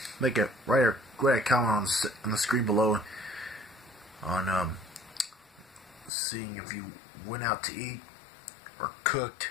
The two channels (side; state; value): right; drops out; at 6.1 s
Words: make a write a comment on the screen below on seeing if you went out to eat or cooked